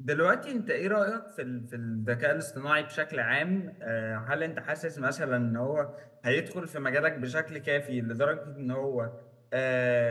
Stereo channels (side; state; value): both; identical; correlation 1.00